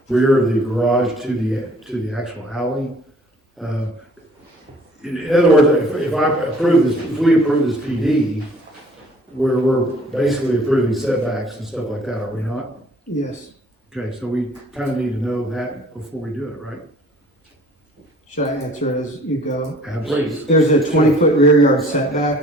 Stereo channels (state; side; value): normal; both; correlation 0.55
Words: rear of the garage to the actual alley. In other words, if we approve this PD, we're basically approving setbacks and stuff like that, are we not? Yes. Okay, so we kind of need to know that before we do it, right? Should I answer it as you go? Please. There's a 20-foot rear yard setback,